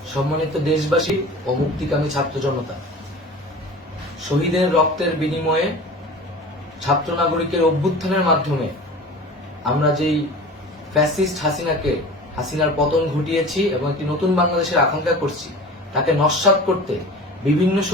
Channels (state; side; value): normal; both; correlation 0.37